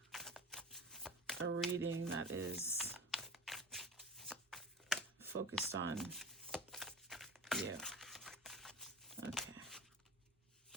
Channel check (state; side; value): normal; both; correlation 0.34